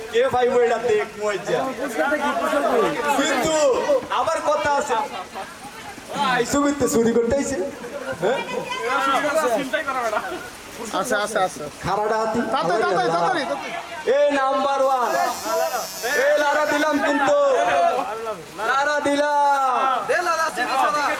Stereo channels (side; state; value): both; identical; correlation 1.00